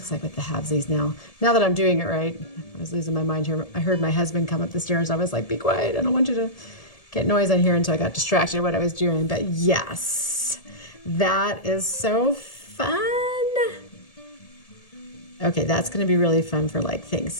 like with the halvesies now. Now that I'm doing it right. I was losing my mind here. I heard my husband come up the stairs. I was like, be quiet. I don't want you to get noise on here. And so I got distracted with what I was doing. But yes, that is so fun. Okay, that's going to be really fun for like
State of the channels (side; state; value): right; late; 1.7 ms